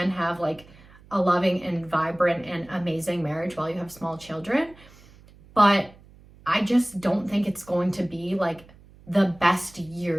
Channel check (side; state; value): right; noise; hum, 24 dB below the sound